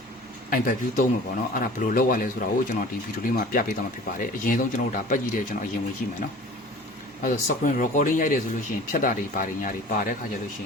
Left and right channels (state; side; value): normal; both; correlation 0.43